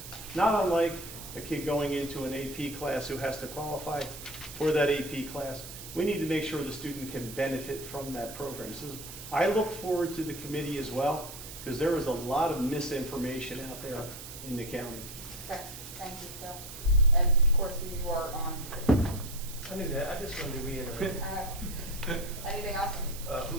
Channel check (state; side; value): noise; right; hiss, 12 dB below the sound